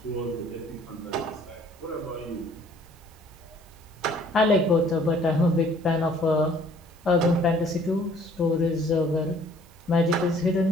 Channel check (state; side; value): noise; right; hiss, 29 dB below the sound